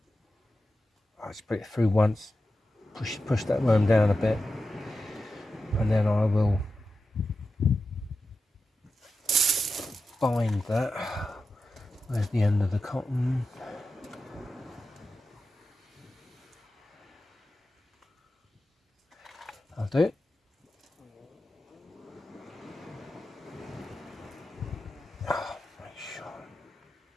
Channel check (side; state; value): both; normal; correlation 0.90